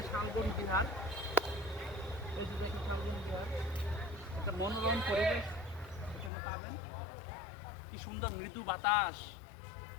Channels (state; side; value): drops out; right; at 6.3 s